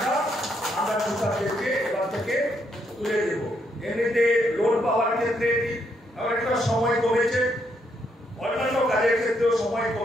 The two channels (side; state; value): both; normal; correlation 0.75